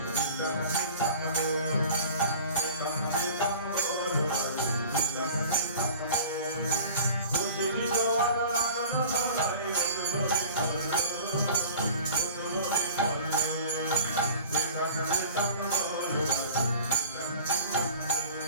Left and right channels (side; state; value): both; inverted; correlation -0.43